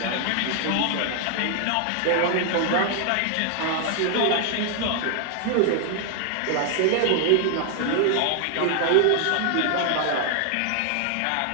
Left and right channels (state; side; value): different; both; correlation 0.00